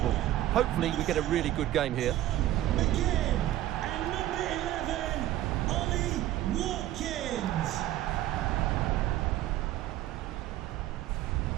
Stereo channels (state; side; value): quieter; left; 14.0 dB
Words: Hopefully we get a really good game here.